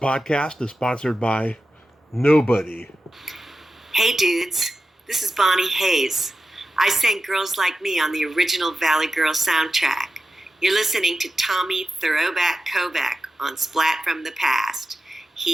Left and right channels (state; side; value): normal; both; correlation 0.92